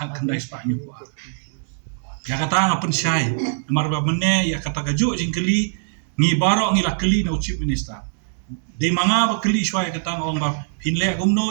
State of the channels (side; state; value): left; silent; digital silence